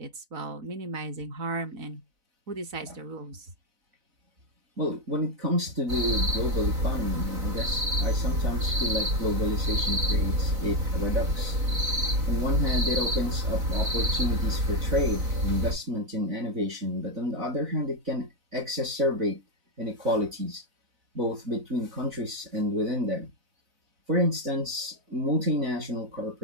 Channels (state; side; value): late; left; 4.0 ms